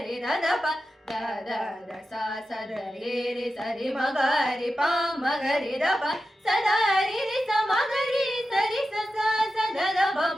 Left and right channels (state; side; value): normal; both; correlation 0.92